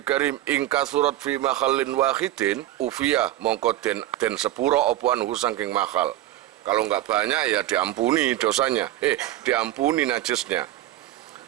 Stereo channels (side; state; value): left; quieter; 14.2 dB